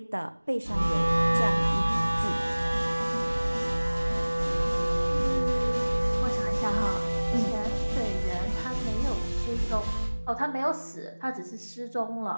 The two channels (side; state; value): both; inverted; correlation -1.00